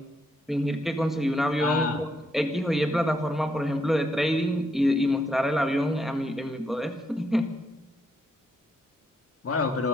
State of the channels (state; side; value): normal; both; correlation 0.77